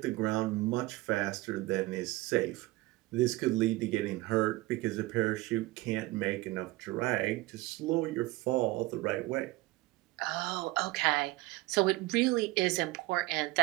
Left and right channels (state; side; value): quieter; left; 20.2 dB